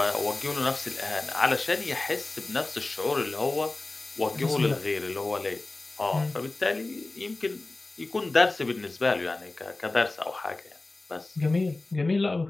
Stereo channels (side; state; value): right; quieter; 3.1 dB